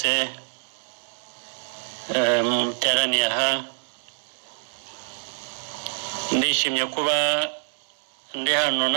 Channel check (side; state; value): left; silent; digital silence